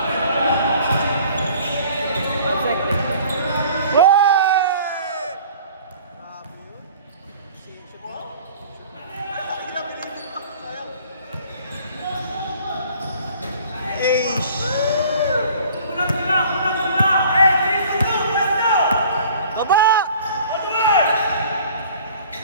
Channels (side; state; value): both; inverted; correlation -0.50